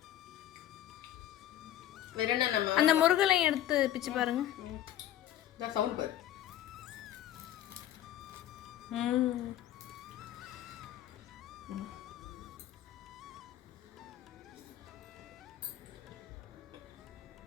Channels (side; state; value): right; quieter; 12.4 dB